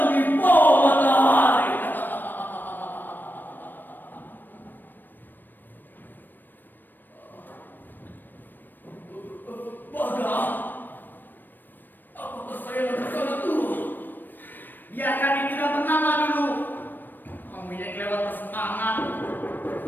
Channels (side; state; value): right; late; 0.092 ms